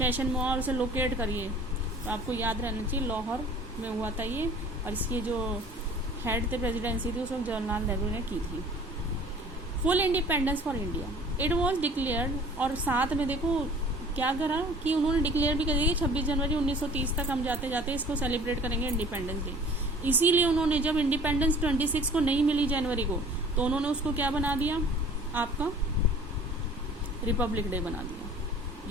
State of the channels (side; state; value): both; normal; correlation 0.48